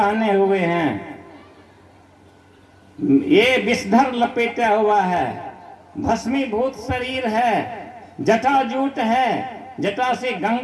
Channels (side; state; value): both; identical; correlation 1.00